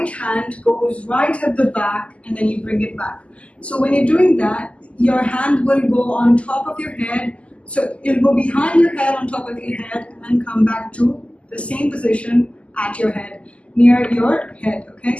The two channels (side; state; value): right; late; 0.060 ms